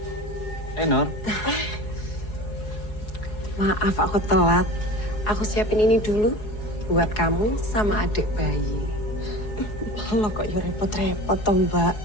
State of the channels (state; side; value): late; right; 4.8 ms